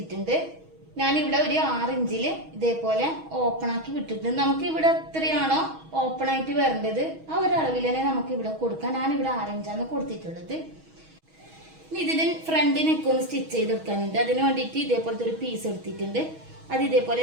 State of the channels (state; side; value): late; left; 6.3 ms